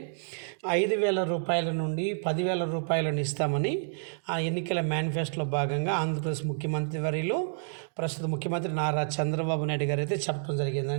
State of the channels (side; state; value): left; silent; digital silence